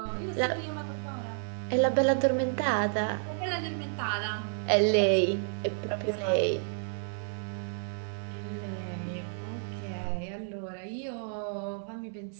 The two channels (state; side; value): silent; left; digital silence